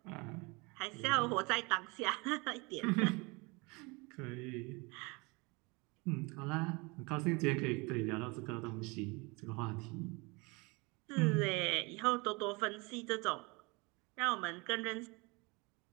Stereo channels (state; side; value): quieter; left; 27.2 dB